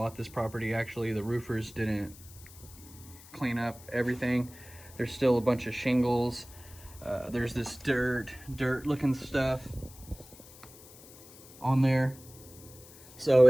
this property, actually the roofers didn't clean up everything. There's still a bunch of shingles. There's this dirt looking stuff on there. So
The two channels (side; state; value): left; noise; hiss, 20 dB below the sound